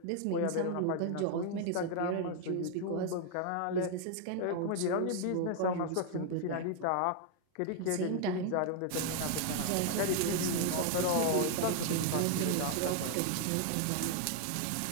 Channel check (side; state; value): both; different; correlation 0.00